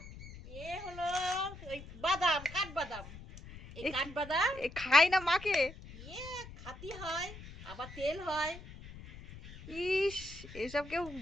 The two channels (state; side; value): noise; left; rumble, 15 dB below the sound